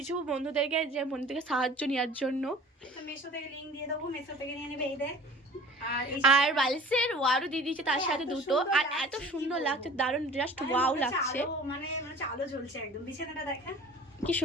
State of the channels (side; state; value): both; normal; correlation 0.45